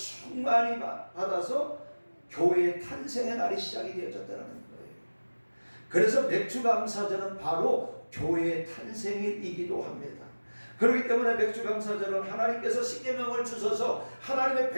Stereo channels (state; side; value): inverted; both; correlation -1.00